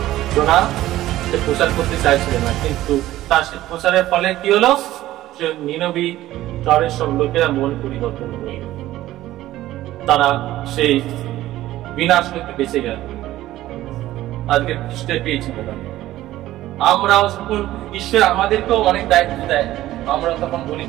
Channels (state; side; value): quieter; left; 15.0 dB